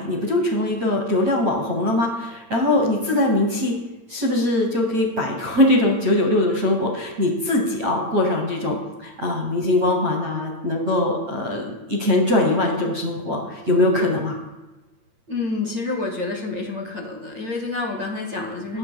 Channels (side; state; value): left; late; 8.8 ms